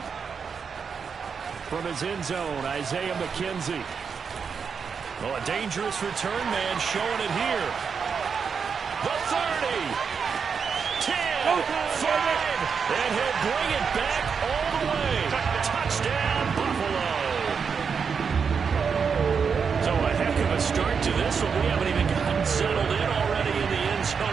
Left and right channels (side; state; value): left; quieter; 6.1 dB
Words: From his end zone, Isaiah McKenzie. Oh, a dangerous return man showing it here. The 30, 10, 5, and he'll bring it back all the way. Touchdown, Buffalo. So a heck of a start to this one. We haven't even gotten settled in already in the end